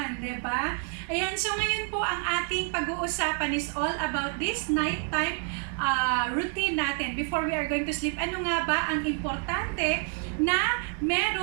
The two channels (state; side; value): quieter; left; 36.0 dB